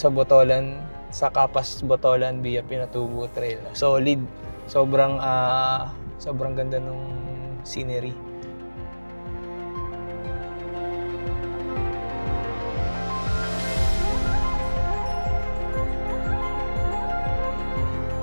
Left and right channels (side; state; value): both; inverted; correlation -1.00